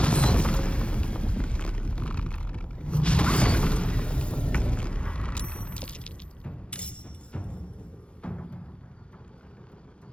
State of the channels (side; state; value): right; late; 0.059 ms